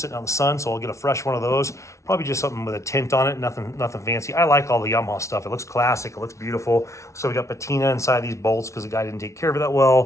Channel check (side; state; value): right; late; 0.14 ms